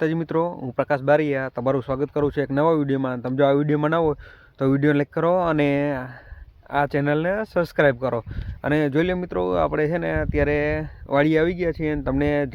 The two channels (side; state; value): both; identical; correlation 1.00